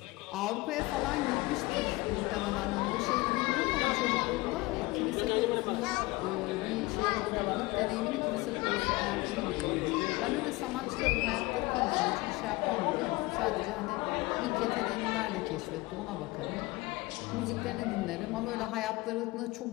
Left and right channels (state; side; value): quieter; right; 21.9 dB